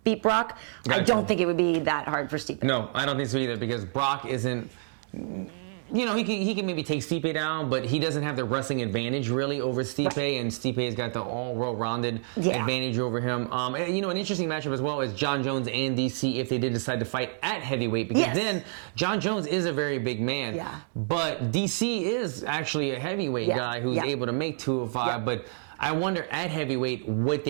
Brock. Gotcha. I don't think it would be that hard for Stipe. No, I don't think so either, because Brock isn't. He can maybe take Stipe down, but he doesn't have the wrestling advantage really over Stipe, and Stipe has got the all-well-rounded advantage over him. An interesting matchup as well is Jon Jones and DC if they did decide to fight at heavyweight, because then Jon Jones is a very big man, but DC is actually a heavyweight guy who's able to make 205, but I wonder at heavyweight what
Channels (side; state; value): left; silent; digital silence